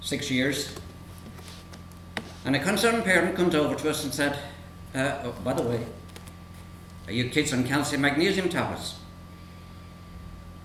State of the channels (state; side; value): identical; both; correlation 1.00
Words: years. And a concerned parent comes over to us and said, oh, by the way, are you kids on calcium magnesium tablets?